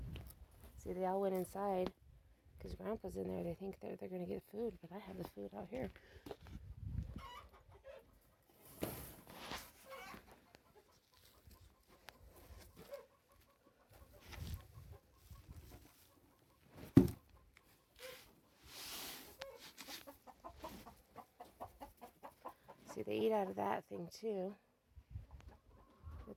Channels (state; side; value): identical; both; correlation 1.00